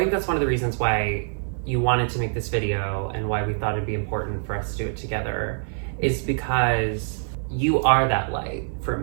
think that's one of the reasons why you wanted to make this video, and why we thought it'd be important for us to do it together, is because you are that light for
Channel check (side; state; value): left; silent; digital silence